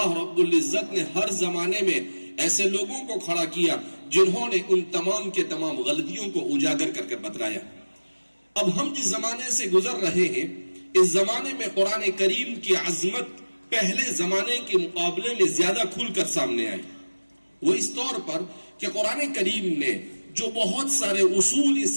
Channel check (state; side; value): inverted; both; correlation -1.00